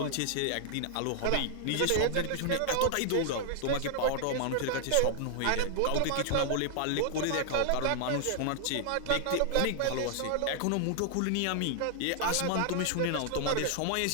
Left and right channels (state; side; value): different; both; correlation 0.00